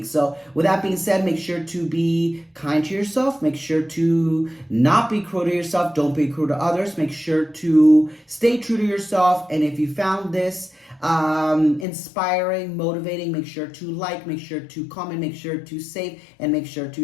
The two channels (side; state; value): right; drops out; at 11.9 s